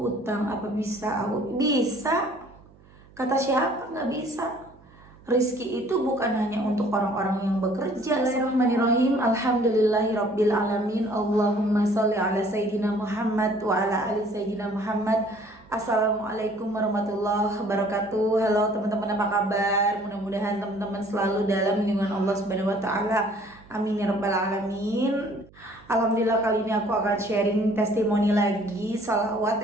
apa bisa aku bisa. Kata siapa nggak bisa? Rizki itu bukan hanya untuk orang-orang yang bekerja. Bismillahirrahmanirrahim. Alhamdulillahirabbil alamin. Allahumma sholli ala sayyidina Muhammad wa ala ali sayyidina Muhammad. Assalamualaikum warahmatullahi wabarakatuh. Halo teman-teman, apa kabar? Mudah-mudahan teman-teman selalu dalam lindungan Allah Subhanahu wa taala. Amin ya rabbal alamin. Alhamdulillah, kali ini aku akan sharing testimoni lagi,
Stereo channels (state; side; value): noise; right; hum, 26 dB below the sound